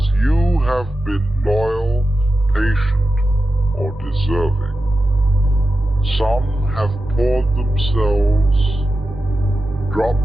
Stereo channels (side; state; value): both; normal; correlation 0.92